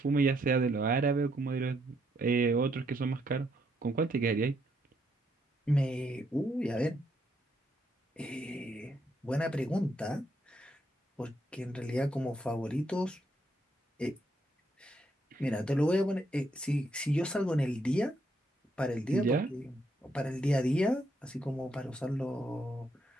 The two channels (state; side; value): normal; both; correlation 0.75